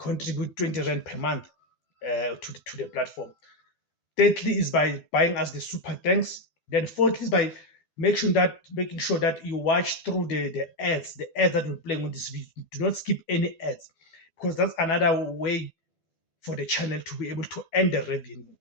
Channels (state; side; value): late; right; 12 ms